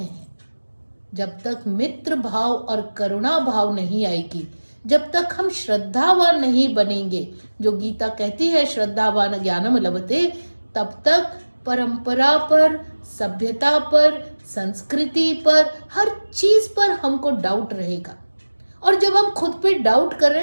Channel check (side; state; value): both; inverted; correlation -1.00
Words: जब तक मित्र भाव और करुणा भाव नहीं आएगी, जब तक हम श्रद्धावान नहीं बनेंगे, जो गीता कहती है श्रद्धावान ज्ञानम लभते, तब तक परंपरा पर, सभ्यता पर, संस्कृति पर, हर चीज पर हमको डाउट रहेगा। और जब हम खुद पे डाउट कर रहे